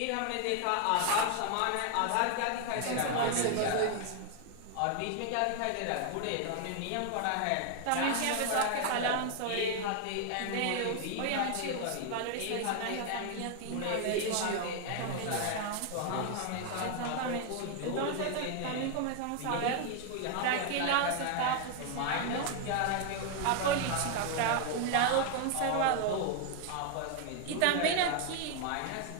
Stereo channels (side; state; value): both; different; correlation 0.00